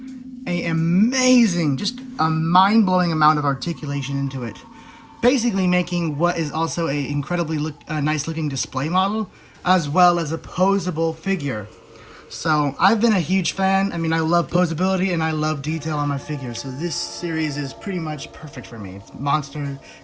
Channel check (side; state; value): both; identical; correlation 1.00